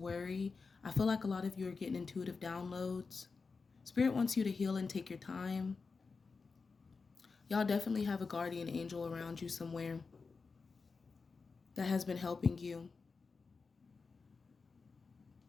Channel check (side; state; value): right; quieter; 4.6 dB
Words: I feel like a lot of you are getting intuitive downloads. Spirit wants you to heal and take your time. Y'all definitely have a guardian angel around you somewhere that has been helping you.